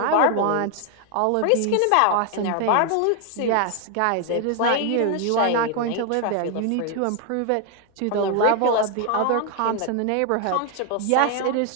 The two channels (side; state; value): both; different; correlation 0.00